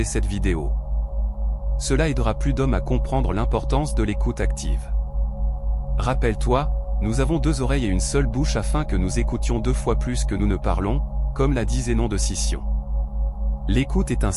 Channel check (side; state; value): both; identical; correlation 1.00